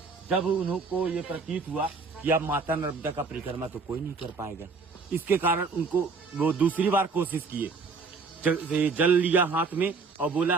जब उनको ये प्रतीत हुआ कि अब माता नर्मदा का परिक्रमा तो कोई नहीं कर पाएगा, इसके कारण उनको वो दूसरी बार कोशिश किए। जल लिया हाथ में और बोला,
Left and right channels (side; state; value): left; quieter; 4.5 dB